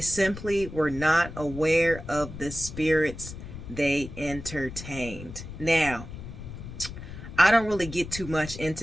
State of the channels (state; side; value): noise; left; rumble, 11 dB below the sound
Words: were not aware of the spirits they entertained. Now, I don't really get too much